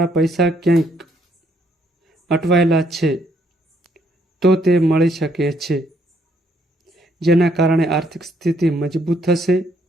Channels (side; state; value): both; normal; correlation 0.70